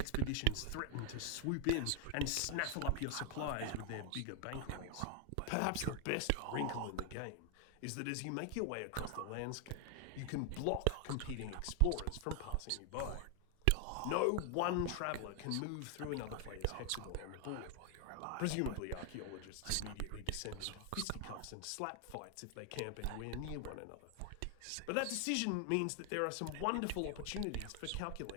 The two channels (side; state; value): both; different; correlation 0.00